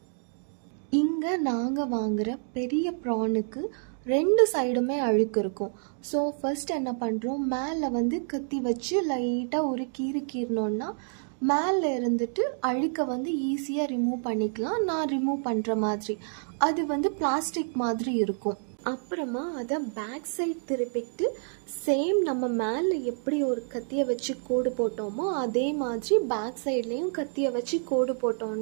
இங்கே நாங்கள் வாங்குகிற பெரிய ப்ரானுக்கு 2 சைடுமே அழுக்கு இருக்கும். ஸோ ஃபர்ஸ்ட் என்ன பண்ணுறோம், மேலே கத்தி வச்சு லைட்டாக ஒரு கீறினோன்னா மேலே இருந்துட்டு அழுக்கை ஈஸியாக ரிமூவ் பண்ணிக்கலாம். நான் ரிமூவ் பண்ணுற மாதிரி அது பிளாஸ்டிக் மாதிரி இருக்கும். அப்புறமா அதை பேக் சைட் திருப்பிக்கிட்டு சேம் நம்ம மேலே எப்படி ஒரு கத்தியை வச்சு கோடு போட்டோமோ அதே மாதிரி பேக் சைட்லேயும் கத்தியை வச்சு கோடு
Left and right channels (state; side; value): silent; left; digital silence